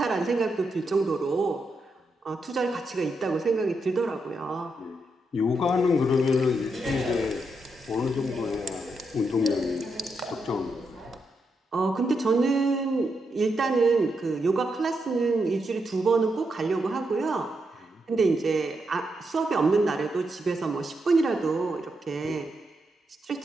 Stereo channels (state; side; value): normal; both; correlation 0.82